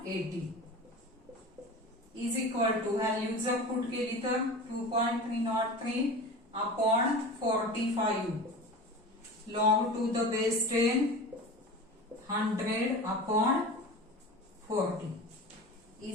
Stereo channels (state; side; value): normal; both; correlation 0.33